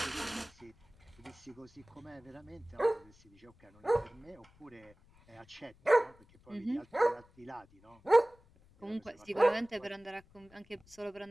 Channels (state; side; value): noise; left; rumble, 27 dB below the sound